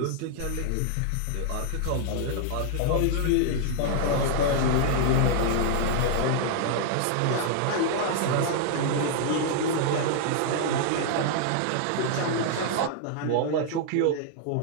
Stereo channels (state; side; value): different; both; correlation -0.01